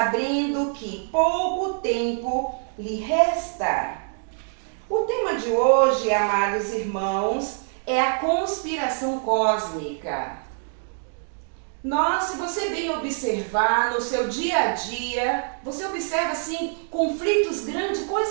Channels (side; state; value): left; silent; 62 dB below the other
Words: que pouco tempo lhe resta. O tema de hoje, amados irmãos, é a conspiração cósmica. Se você bem observar no seu dia a dia, você observa assim conflitos grandes,